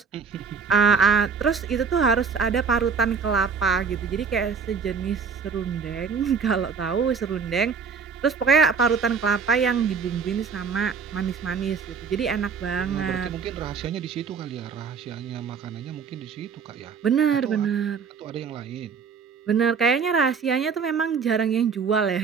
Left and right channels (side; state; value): left; quieter; 5.9 dB